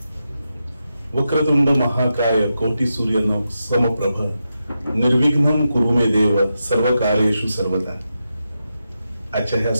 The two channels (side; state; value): both; inverted; correlation -0.88